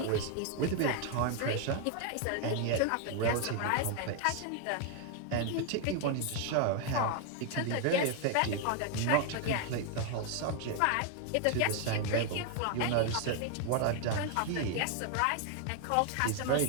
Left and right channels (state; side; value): different; both; correlation 0.00